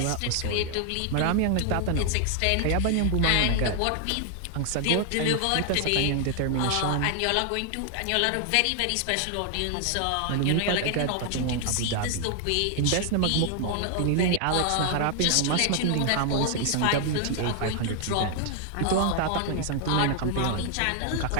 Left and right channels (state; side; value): different; both; correlation 0.00